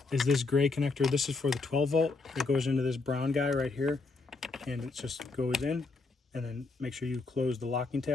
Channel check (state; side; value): quieter; right; 3.8 dB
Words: is this gray connector. This is for the 12 volt. It goes into this brown guy right here, and it just goes in. And then make sure you close the locking